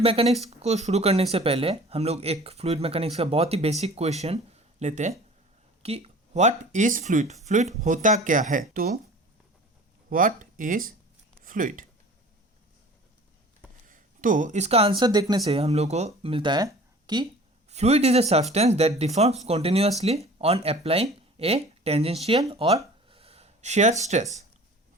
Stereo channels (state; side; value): normal; both; correlation 0.45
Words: को शुरू करने से पहले हम लोग एक फ्लूइड मैकेनिक्स का बहुत ही बेसिक क्वेश्चन लेते हैं कि व्हाट इज़ फ्लूइड। फ्लूइड होता क्या है? तो व्हाट इज़ फ्लूइड, तो इसका आंसर देखने से हम लोग को मिलता है कि fluid is a substance that deforms continuously on applying A tangential और शेयर स्ट्रेस।